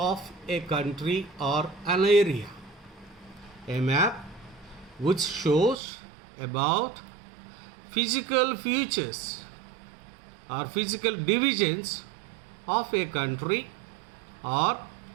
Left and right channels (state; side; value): drops out; left; at 5.8 s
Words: a country or an area. A map which shows about physical features or physical divisions of a country, or